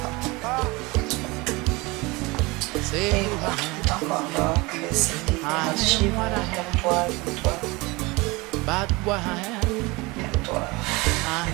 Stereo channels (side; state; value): left; quieter; 24.1 dB